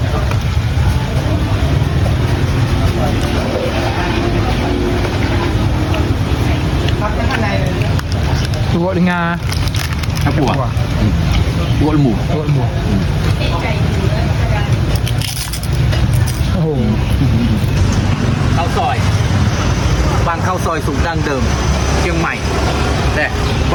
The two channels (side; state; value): both; identical; correlation 1.00